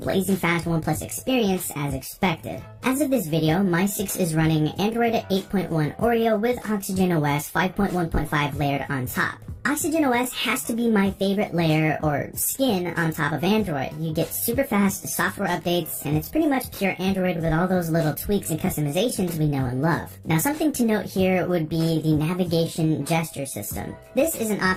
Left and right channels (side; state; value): both; identical; correlation 1.00